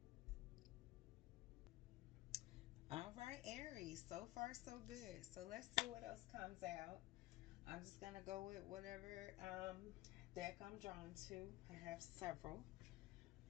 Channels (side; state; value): right; quieter; 17.3 dB